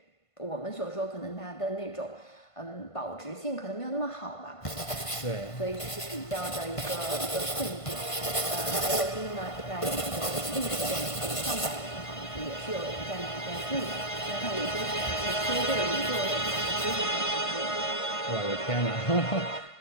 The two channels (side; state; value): right; late; 1.5 ms